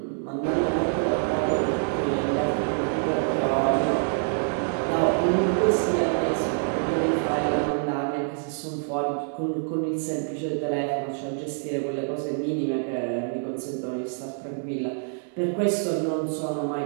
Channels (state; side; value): silent; left; 61 dB below the other